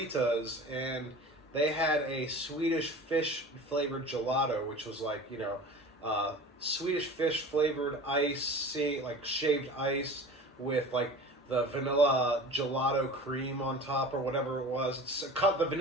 and they had a Swedish Fish flavored gelato, which was like, Swedish Fish flavored ice, like shaved ice with like the vanilla gelato cream on top or whatever it was. It's the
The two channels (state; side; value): normal; both; correlation 0.38